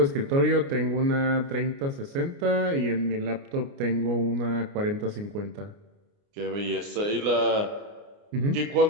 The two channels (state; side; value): late; left; 29 ms